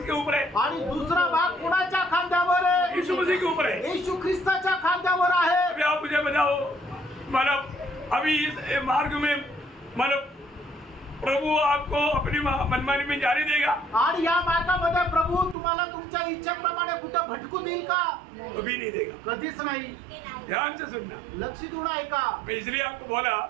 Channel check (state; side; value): drops out; left; at 15.6 s